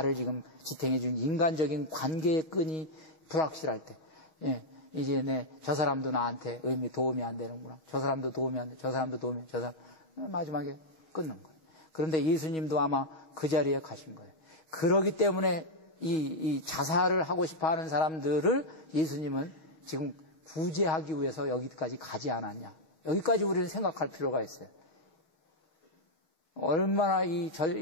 지금 지탱해 준 인간적인 관계의 끈이 불확실할 때, 이제 저 사람도 나한테 도움이 안 되는구나. 저 사람도 도움이 안 돼. 저 사람도 도움이 안 돼. 저 사람 마지막에 끊는 거예요. 그런데 예수님도 아마 그 자리에 가신 거예요. 그러기 때문에 이 자살을 하고 싶어하는 사람들을 예수님은 지금 구제하기 위해서 여기까지 가지 않았냐. 여기까지 우리는 생각할 필요가 있어요. 얼마나 이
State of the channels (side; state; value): right; late; 6.3 ms